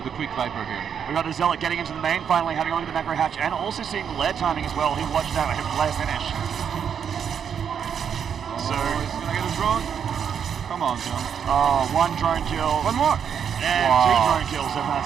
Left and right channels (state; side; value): quieter; left; 7.8 dB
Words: quick Viper here. We got the Zealot getting into the main, finally having a look at the macro hatch, and also seeing the lair timing as well. He watched out him lair finish. So he's going to get a drone. Come on, John. Oh, 1 drone kill. One more. And 2 drone kills from that